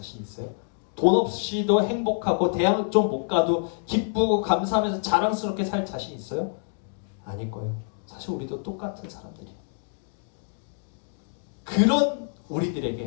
있어요? 돈 없이도 행복하고 대학 좀 못 가도 기쁘고 감사하면서 자랑스럽게 살 자신 있어요? 아닐 거예요. 사실 우리도 똑같은 사람들이에요. 그런 우리들에게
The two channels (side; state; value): right; silent; digital silence